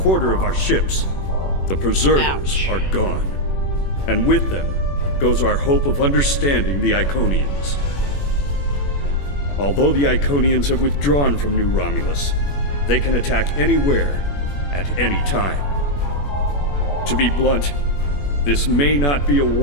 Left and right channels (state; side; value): late; right; 21 ms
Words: of our ships. The Preservers are gone, and with them goes our hope of understanding the Iconians. Although the Iconians have withdrawn from New Romulus, they can attack anywhere, at any time. To be blunt, this may not be a